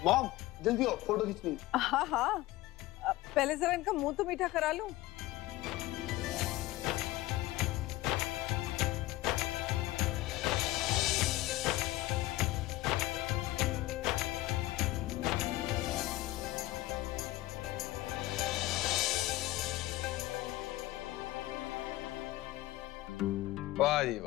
मॉम जल्दी आओ, फोटो खींचनी। हाँ, पहले जरा इनका मुंह तो मीठा करा लूं। वाह जी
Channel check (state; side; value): quieter; right; 17.6 dB